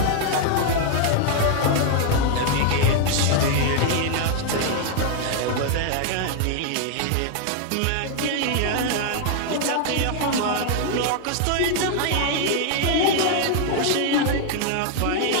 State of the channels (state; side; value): different; both; correlation 0.00